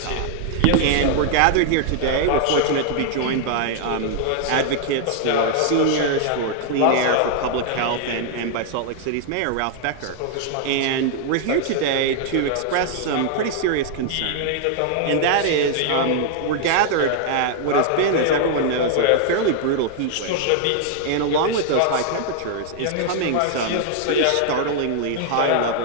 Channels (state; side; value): different; both; correlation 0.00